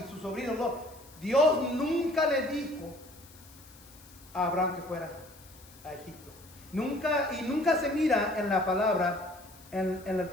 su sobrino Lot, Dios nunca le dijo a Abraham que fuera a Egipto. Nunca se mira en la palabra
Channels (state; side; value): noise; left; hiss, 22 dB below the sound